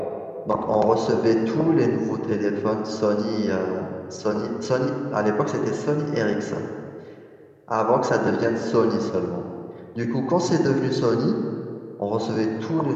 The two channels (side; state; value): both; identical; correlation 1.00